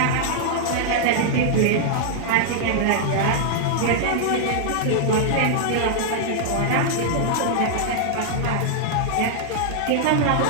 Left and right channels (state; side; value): different; both; correlation -0.01